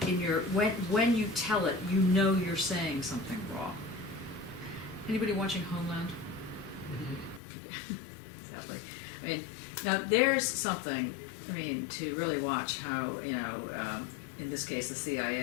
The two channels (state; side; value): drops out; right; at 7.4 s